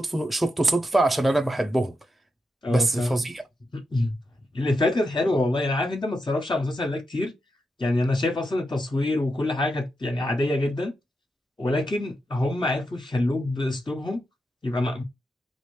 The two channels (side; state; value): both; normal; correlation 0.86